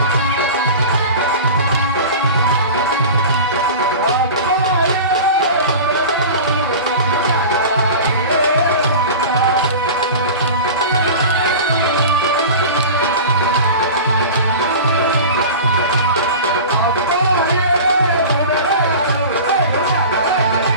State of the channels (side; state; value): both; inverted; correlation -0.33